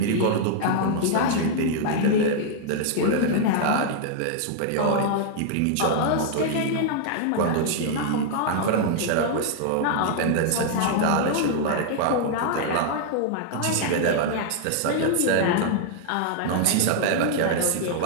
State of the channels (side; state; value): both; different; correlation -0.01